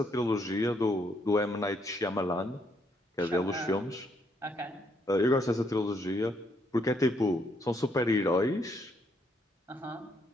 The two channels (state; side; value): normal; both; correlation 0.73